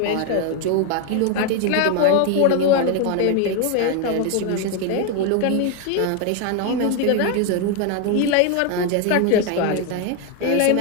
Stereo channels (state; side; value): different; both; correlation 0.01